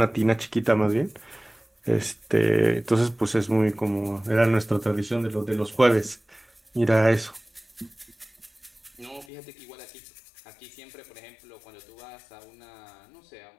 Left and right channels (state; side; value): drops out; right; at 9.2 s